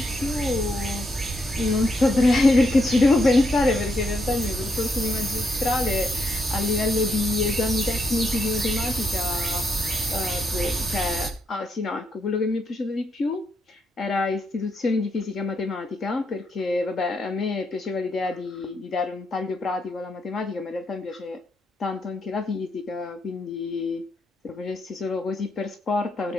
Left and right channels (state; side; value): normal; both; correlation 0.79